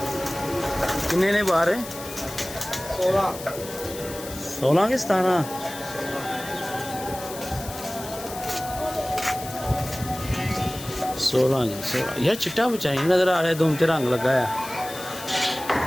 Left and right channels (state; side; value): noise; left; hiss, 12 dB below the sound